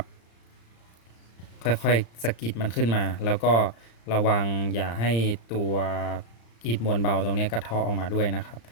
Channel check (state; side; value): late; right; 35 ms